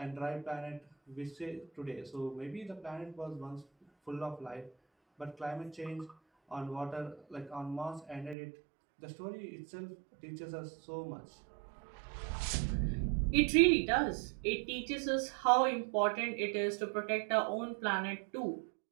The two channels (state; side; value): drops out; left; at 8.3 s